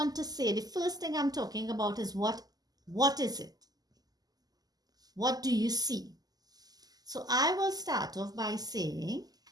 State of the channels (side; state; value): left; late; 0.19 ms